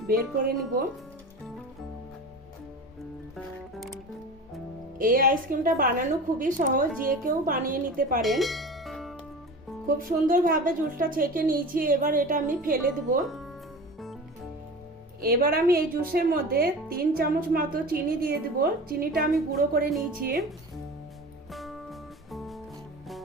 বের করে নিব। এই আইসক্রিমটা বানানো খুবই সহজ, যে কেউ বানিয়ে নিতে পারেন। খুব সুন্দরভাবে জুসটা ছেঁকে নিয়েছি। এবার এটা আমি ফেলে দেব। এবার আমি এই জুসের মধ্যে 3 চামচ মতো চিনি দিয়ে দেব। চিনিটা আমি গুঁড়ো করে নিয়েছি।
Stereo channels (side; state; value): both; normal; correlation 0.34